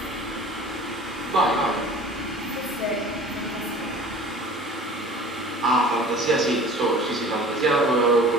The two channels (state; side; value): normal; both; correlation 0.44